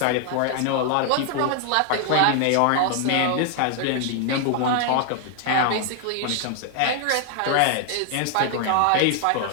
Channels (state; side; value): different; both; correlation 0.00